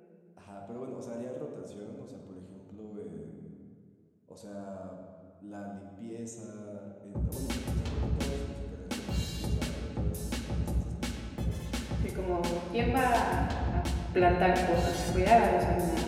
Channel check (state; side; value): identical; both; correlation 1.00